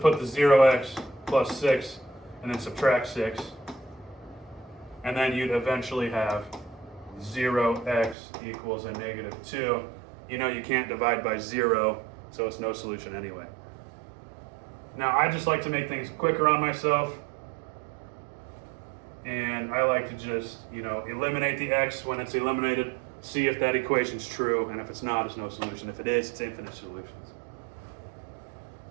the 0x plus 6 and then subtract 6. And then you'd eventually have 0x equals a negative 2. You know you can't divide by 0, so it's no solution anyway. Now, I just like to make things quicker on myself. And I like to just, eliminate the x when it's eliminated, see if that equation's true, and if it's not, it's no solution. If it is, it's infinite solutions.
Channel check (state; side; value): drops out; left; at 8.2 s